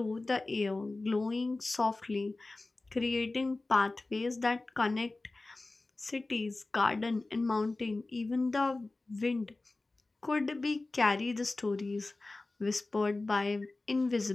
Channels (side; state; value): right; quieter; 3.2 dB